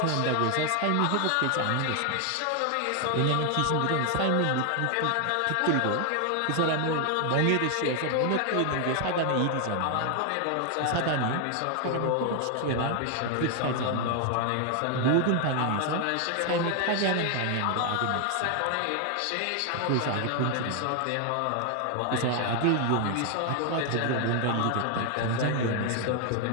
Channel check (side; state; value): both; different; correlation 0.00